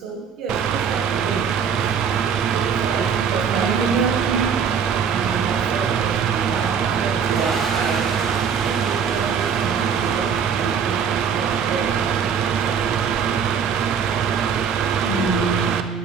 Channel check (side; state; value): left; quieter; 6.9 dB